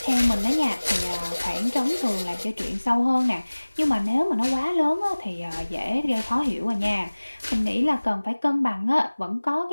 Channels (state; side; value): inverted; both; correlation -1.00